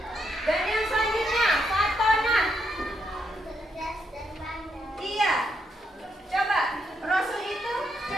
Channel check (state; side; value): normal; both; correlation 0.78